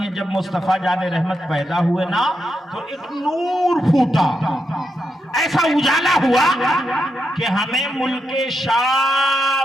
جب مصطفیٰ جان رحمت پیدا ہوئے نا تو ایک نور پھوٹا, ایسا اجالا ہوا کہ ہمیں ملک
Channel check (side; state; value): both; normal; correlation 0.85